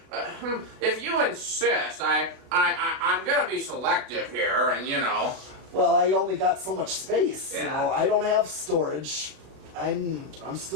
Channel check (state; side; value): late; left; 36 ms